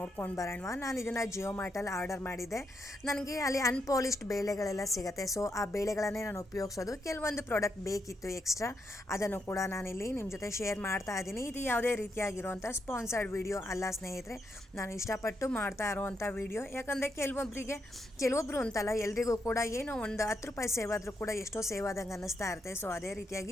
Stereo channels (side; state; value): both; normal; correlation 0.80